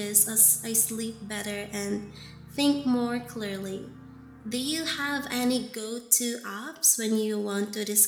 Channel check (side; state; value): both; identical; correlation 1.00